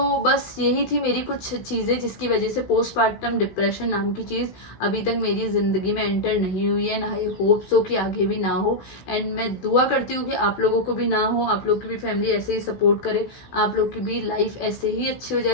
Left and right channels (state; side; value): late; right; 16 ms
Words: बस यही थी मेरी कुछ चीजें जिसकी वजह से पोस्टपार्टम डिप्रेशन नाम की चीज अभी तक मेरी जिंदगी में एंटर नहीं हुई है, ना ही होप सो कि आगे भी ना हो। एंड मैं दुआ करती हूँ कि आप लोगों को भी ना हो, आप लोग की भी फैमिली ऐसे ही सपोर्ट करे, आप लोग की भी लाइफ ऐसे ही अच्छी हो